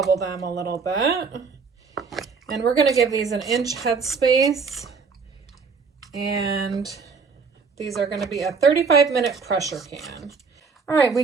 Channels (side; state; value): left; quieter; 5.2 dB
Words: them a little bit. And we're gonna give these an inch headspace. And these are gonna be a 35-minute pressure can. All right, we